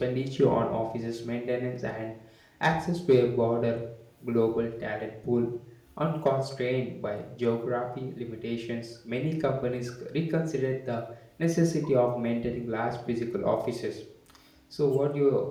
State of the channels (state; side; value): identical; both; correlation 1.00